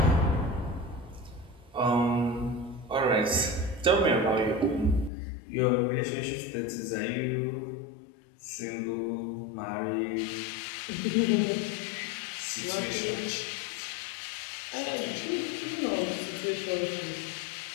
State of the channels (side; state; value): right; drops out; at 5.1 s